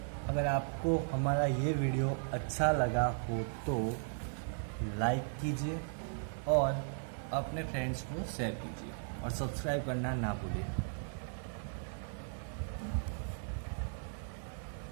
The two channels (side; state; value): left; silent; 53 dB below the other